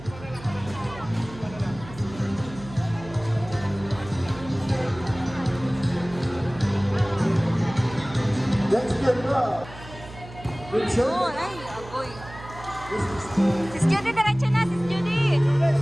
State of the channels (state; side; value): noise; right; hum, 16 dB below the sound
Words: Let's get up. Yun. Ay, agoy. Sis Judy, diretso na. Sis Judy.